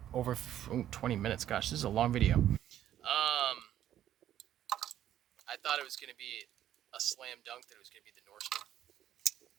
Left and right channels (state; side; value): quieter; left; 11.6 dB